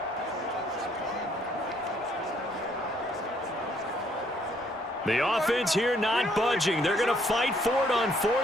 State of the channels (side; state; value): both; normal; correlation 0.66